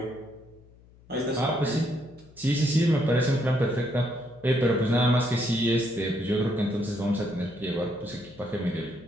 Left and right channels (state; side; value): noise; left; hum, 25 dB below the sound